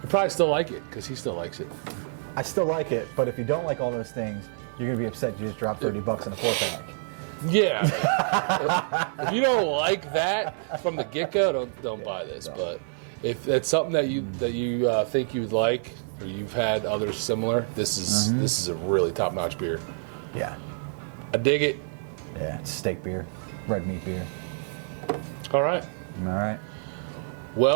still like it, because he still likes it. I still like it, but if you don't like all those things, you're going to be upset you just dropped $30 in a 4-pack. Yeah. If you don't like that from the get-go, don't buy this. Don't. But if that's something that you think you would like, or you've had others similar, this is a really top-notch beer. Yeah. I dig it. Yeah, it's steak beer, red meat beer. All right. All right.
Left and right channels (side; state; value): left; silent; 60 dB below the other